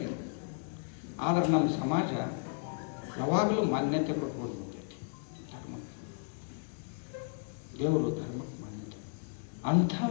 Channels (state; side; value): silent; right; digital silence